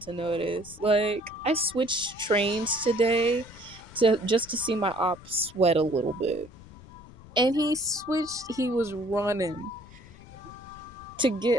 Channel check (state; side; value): noise; left; rumble, 19 dB below the sound